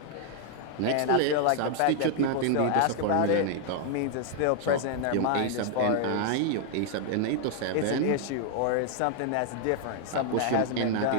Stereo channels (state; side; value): different; both; correlation 0.00